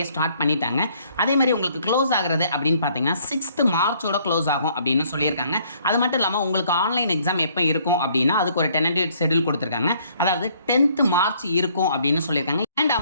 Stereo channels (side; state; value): both; inverted; correlation -0.63